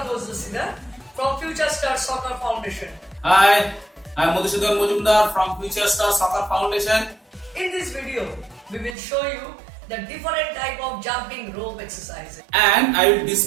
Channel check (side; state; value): left; drops out; at 9.0 s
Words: Ghosh from Future Star Soccer Foundation. Hi, I am Madhusudan Mujumdar from Future Star Soccer Foundation. In this video, we will show you the different type of jumping rope exercises. And I will